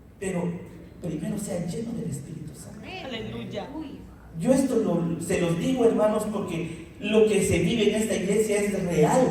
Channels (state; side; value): identical; both; correlation 1.00